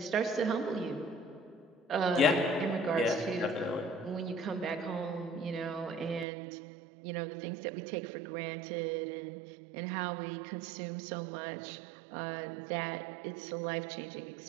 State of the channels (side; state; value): left; drops out; at 6.2 s